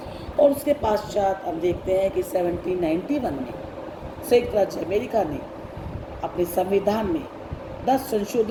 और उसके पश्चात हम देखते हैं कि 1791 में संयुक्त राज्य अमेरिका ने अपने संविधान में 10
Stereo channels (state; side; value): identical; both; correlation 1.00